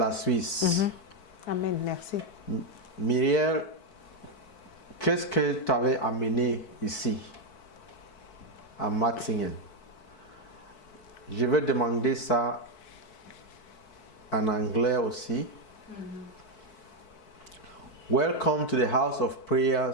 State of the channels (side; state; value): right; late; 4.6 ms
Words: Suisse. Amen, merci. Myriel, qu'est-ce que tu avais amené ici, à Matzingen? Je vais demander ça en anglais aussi. Welcome to the House of